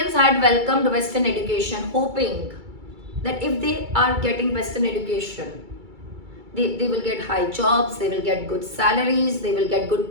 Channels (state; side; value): late; left; 2.3 ms